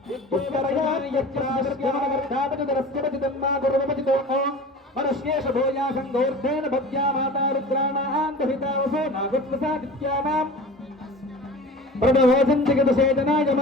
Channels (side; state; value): both; normal; correlation 0.38